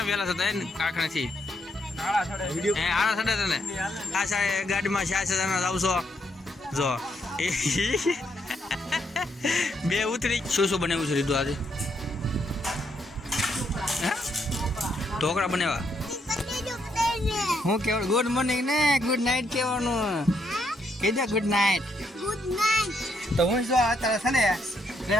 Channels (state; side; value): normal; both; correlation 0.76